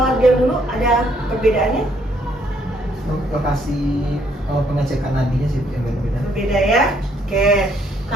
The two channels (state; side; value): normal; both; correlation 0.68